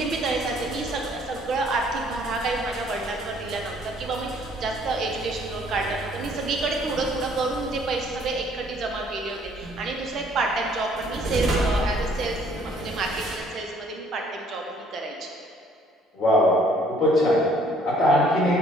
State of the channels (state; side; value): normal; both; correlation 0.61